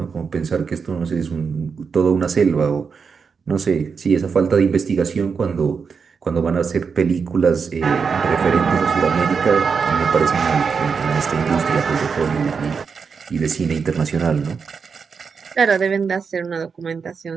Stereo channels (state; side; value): quieter; left; 5.7 dB